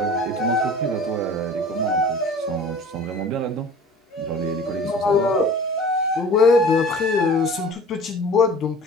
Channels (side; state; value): both; normal; correlation 0.43